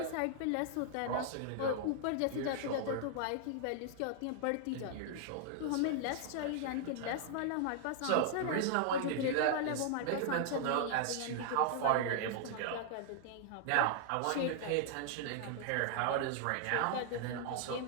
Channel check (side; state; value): both; different; correlation -0.01